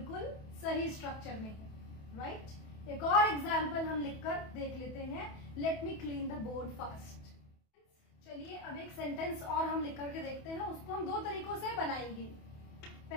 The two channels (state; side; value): late; right; 28 ms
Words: सही स्ट्रक्चर में है, राइट। एक और एग्जाम्पल हम लिखकर देख लेते हैं। Let me clean the board fast. चलिए अब एक सेंटेंस और हम लिख करके देखते हैं, उसको हम दो तरीकों से बनाएंगे।